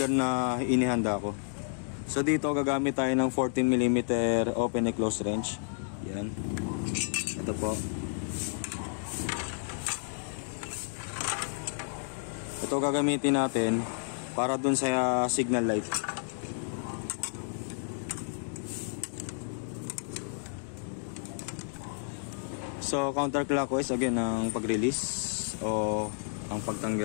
na inihanda ko. So dito gagamit tayo ng 14mm open and close wrench. Yan. Ito po. Ito gagamitin natin para dun sa signal light. So counterclockwise again ang pag-release o ang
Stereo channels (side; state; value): right; silent; digital silence